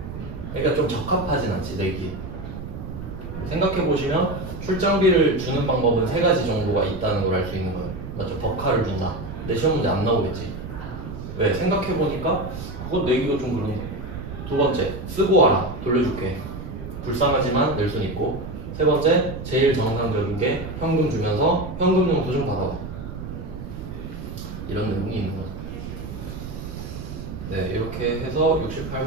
그러니까 좀 적합하진 않지 내기. 생각해 보시면 출장비를 주는 방법은 세 가지 정도가 있다는 걸 알 수 있는 거예요. 맞죠? 버카를 준다. 근데 시험 문제 안 나오겠지. 왜? 생각해 보니까 그거 내기가 좀 그런데. 두 번째, 쓰고 와라. 돌려줄게. 불쌍하지만 낼 순 있고. 세 번째, 제일 정상적인 게 현금 주면서 현금용 도좀 받아와. 이런 내용이 있는 거죠. 네, 이렇게 해서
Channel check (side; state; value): right; noise; rumble, 9 dB below the sound